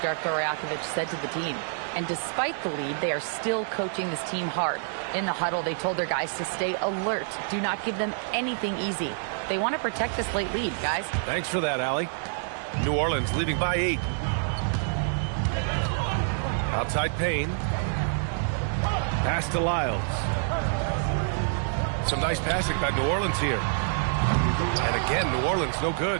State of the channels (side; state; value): left; silent; digital silence